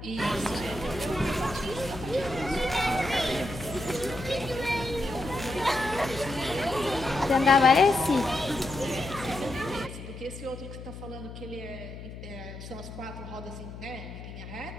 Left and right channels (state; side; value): noise; left; hum, 12 dB below the sound